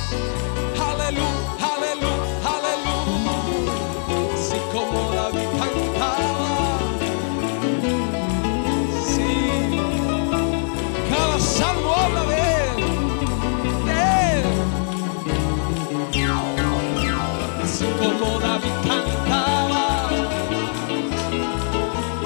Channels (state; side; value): silent; right; digital silence